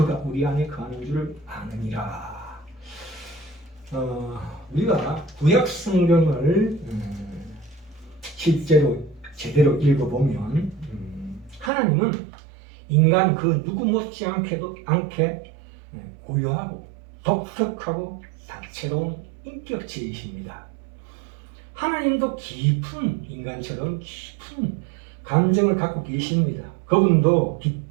우리 안에 거하는 줄을 아느니라. 우리가 구약 성경을 실제로 제대로 읽어보면 하나님은 인간 그 누구 못지않게 고요하고 독특하고 다채로운 인격체이십니다. 하나님도 인간처럼 깊은 감정을 갖고 계십니다. 그분도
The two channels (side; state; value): left; drops out; at 11.7 s